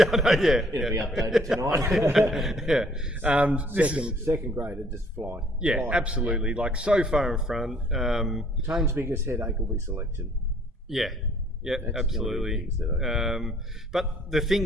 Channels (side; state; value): both; normal; correlation 0.60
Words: I know, yeah. It'll be updated tonight. Yeah. second grader just fly. Yeah, Fly. absolutely. Like so far in front. Tane's biggest headache will be selection. Yeah, That's absolutely. the only thing But the